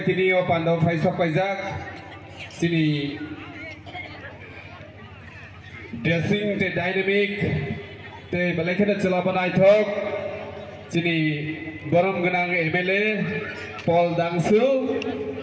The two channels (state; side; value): identical; both; correlation 1.00